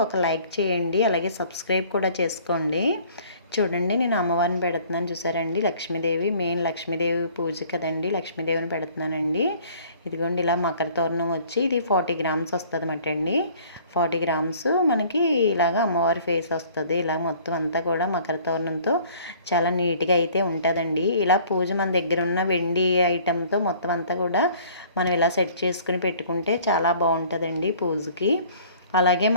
ఒక లైక్ చేయండి. అలాగే సబ్స్క్రైబ్ కూడా చేసుకోండి. చూడండి నేను అమ్మవారిని పెడుతున్నాను చూసారండి. లక్ష్మీదేవి, మెయిన్ లక్ష్మీదేవి పూజ కదండి, లక్ష్మీదేవిని పెడుతున్నానండి. ఇదిగోండి ఇలా మకర తోరణం వచ్చి ఇది 40 గ్రామ్స్ వస్తుంది అన్నమాట అండి. 40 గ్రామ్స్ మనకి ఇలాగా అమ్మవారి ఫేస్ వస్తుంది. ఇలా మొత్తం అంతా కూడా మకర తోరణంతో చాలా నీట్గా అయితే ఉంటుందండి. ఇలా పూజ మన దగ్గర ఉన్న వెండి ఐటెంతో మొత్తం అంతా కూడా మనం ఇలా సెట్ చేసుకుని పెట్టుకుంటే చాలా బాగుంటుందండి పూజకి. అలాగే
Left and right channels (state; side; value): inverted; both; correlation -0.53